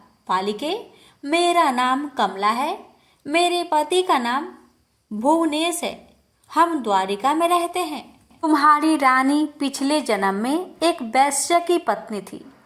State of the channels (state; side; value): identical; both; correlation 1.00